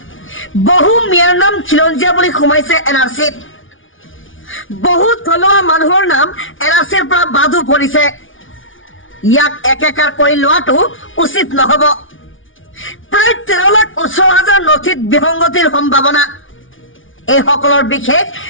বহু মিয়াৰ নাম খিলঞ্জীয়া বুলি সোমাইছে এনআৰচিত। বহু থলুৱা মানুহৰ নাম এনআৰচিৰ পৰা বাদো পৰিছে। ইয়াক একেকাৰ কৰি লোৱাটো উচিত নহব। প্ৰায় 13,18,000 নথিত বিসংগতিৰ সম্ভাৱনা। এইসকলৰ বিশেষ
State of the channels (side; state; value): right; late; 0.57 ms